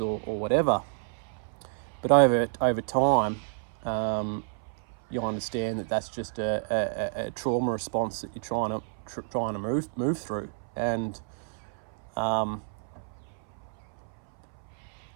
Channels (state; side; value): silent; left; 58 dB below the other